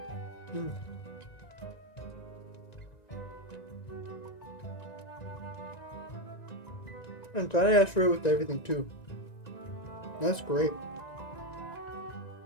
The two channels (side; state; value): right; late; 1.9 ms